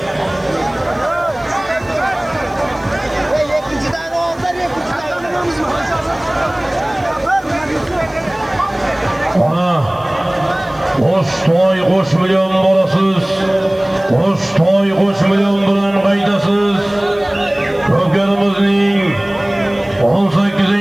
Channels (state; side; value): noise; right; hiss, 30 dB below the sound